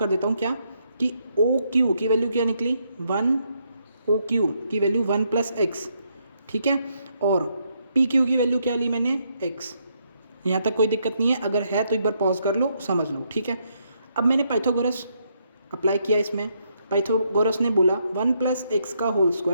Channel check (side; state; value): both; inverted; correlation -0.76